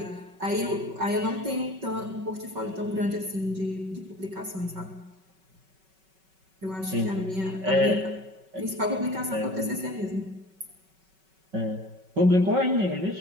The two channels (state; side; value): late; left; 5.3 ms